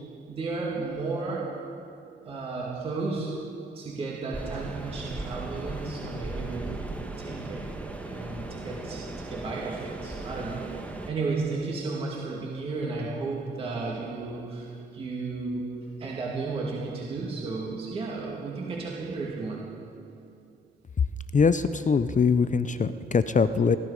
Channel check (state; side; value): normal; both; correlation 0.64